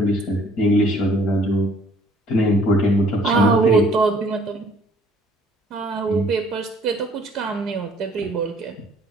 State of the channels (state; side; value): normal; both; correlation 0.59